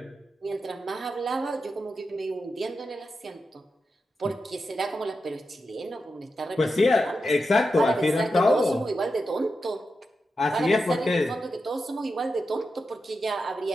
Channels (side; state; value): both; normal; correlation 0.89